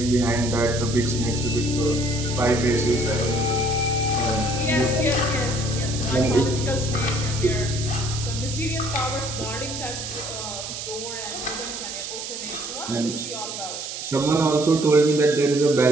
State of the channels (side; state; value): right; noise; hiss, 7 dB below the sound